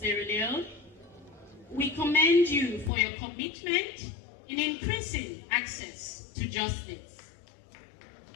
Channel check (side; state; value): right; drops out; at 2.9 s